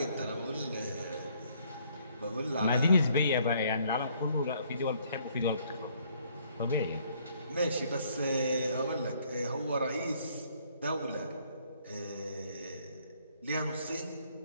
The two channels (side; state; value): both; inverted; correlation -0.65